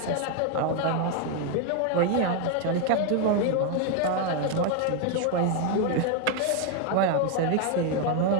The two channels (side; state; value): both; different; correlation 0.01